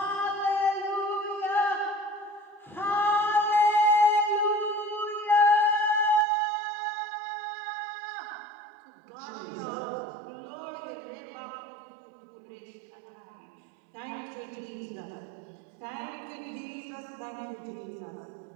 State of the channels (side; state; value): left; drops out; at 6.2 s